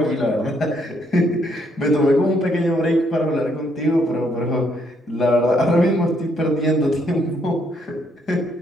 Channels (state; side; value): normal; both; correlation 0.71